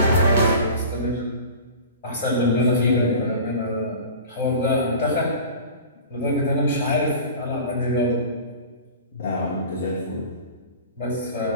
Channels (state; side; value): inverted; both; correlation -0.38